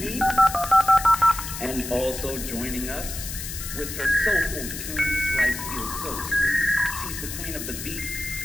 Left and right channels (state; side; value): noise; left; hiss, 8 dB below the sound